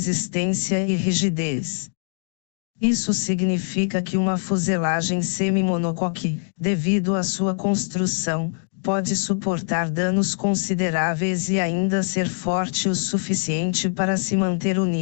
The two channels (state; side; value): silent; right; digital silence